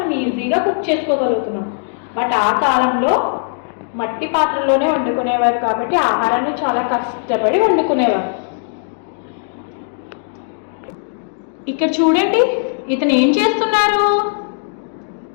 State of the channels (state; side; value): silent; right; digital silence